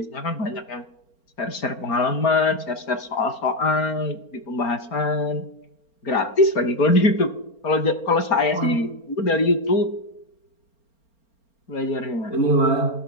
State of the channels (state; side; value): late; right; 4.4 ms